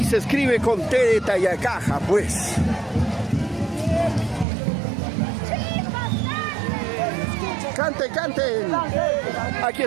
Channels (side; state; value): left; drops out; at 4.5 s